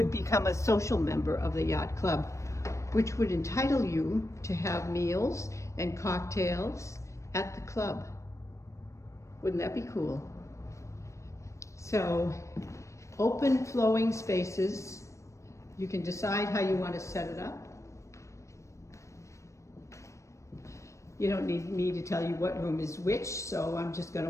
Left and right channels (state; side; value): late; right; 0.15 ms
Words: become a social member of the yacht club, which would entitle you to have meals and cocktails at the club. Wouldn't that be cool? So, open flowing spaces. You can decide how you want to set it up. You don't need me to tell you what room is which, so I'm just going